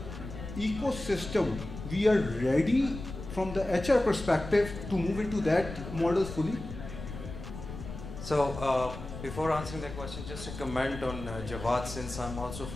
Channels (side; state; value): left; noise; rumble, 10 dB below the sound